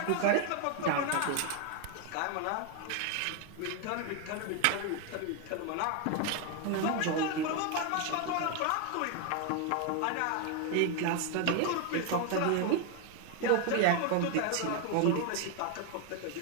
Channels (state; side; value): different; both; correlation 0.01